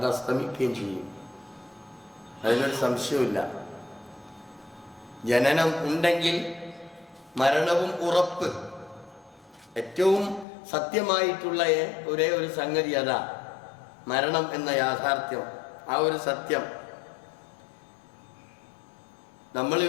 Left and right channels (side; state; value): right; drops out; at 10.5 s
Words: അസ്തമിക്കുകയും ചെയ്യും, അതിനൊരു സംശയമില്ല. ജനനം ഉണ്ടെങ്കിൽ മരണവും ഉറപ്പ്. ഏറ്റവും സത്യമായിട്ടുള്ള ഒരേ ഒരു സംഗതി അതാ, മരണം എന്ന യാഥാർത്ഥ്യം. ആ ഒരു സത്യം